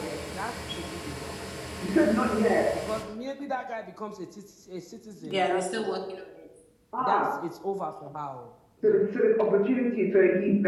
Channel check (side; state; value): both; identical; correlation 1.00